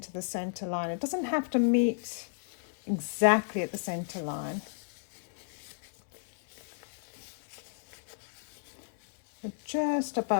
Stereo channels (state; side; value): silent; right; 56 dB below the other